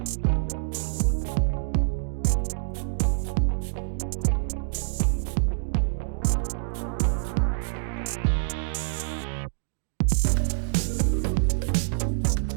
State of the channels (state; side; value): silent; left; digital silence